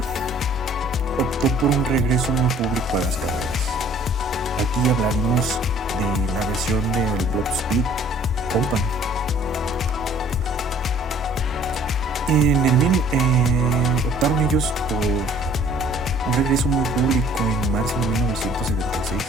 optó por un regreso muy público a las carreras. Aquí hablaremos de la versión del Block Speed Company. Optaron ellos por un regreso muy público en marzo de 1976.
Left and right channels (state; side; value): normal; both; correlation 0.55